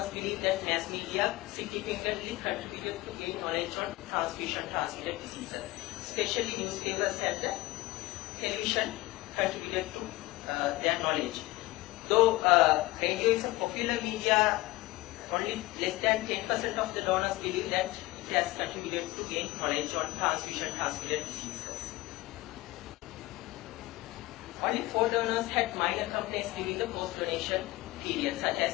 believe that mass media significantly contributed to gain knowledge on transfusion-transmitted diseases. Especially newspapers and the television contributed to their knowledge. Though radio is a popular media, only less than 10% of the donors believe that it has contributed to gain knowledge on transfusion-transmitted diseases. Only 4 donors had minor complaints during the post-donation period, such as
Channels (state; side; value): quieter; right; 19.4 dB